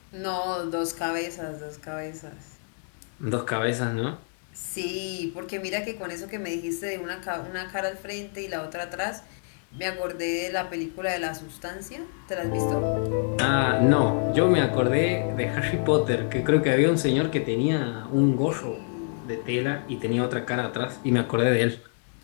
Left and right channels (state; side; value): silent; right; 60 dB below the other